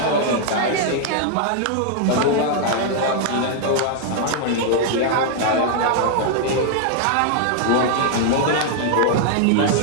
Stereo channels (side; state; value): both; different; correlation -0.01